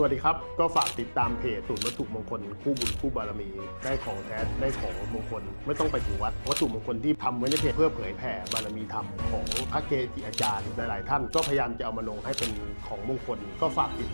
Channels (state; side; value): inverted; both; correlation -1.00